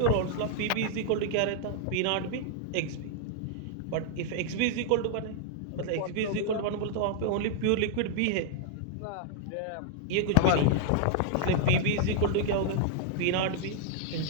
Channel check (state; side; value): different; both; correlation 0.00